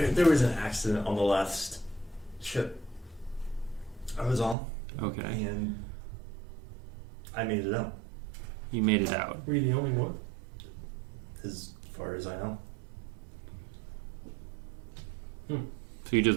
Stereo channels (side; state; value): left; drops out; at 4.5 s